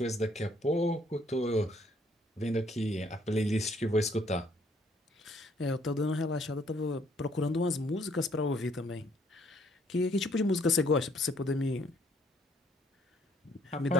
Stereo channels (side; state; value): both; normal; correlation 0.65